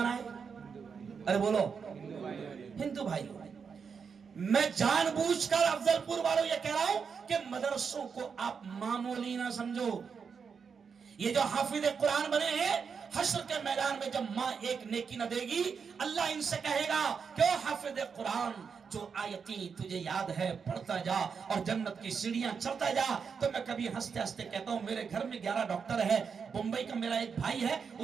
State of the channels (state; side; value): quieter; left; 6.0 dB